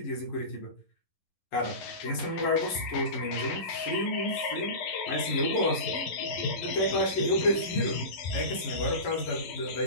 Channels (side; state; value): right; late; 11 ms